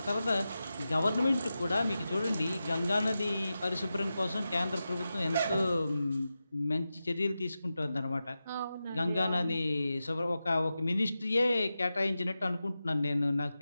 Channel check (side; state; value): both; inverted; correlation -0.92